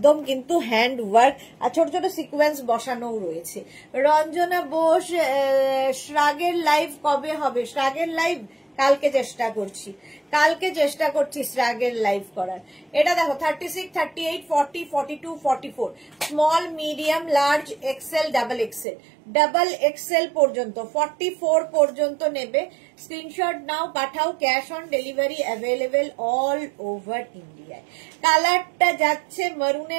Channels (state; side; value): drops out; left; at 18.9 s